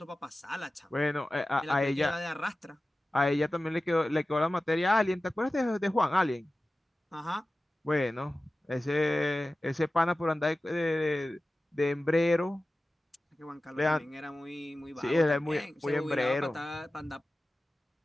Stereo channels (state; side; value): normal; both; correlation 0.96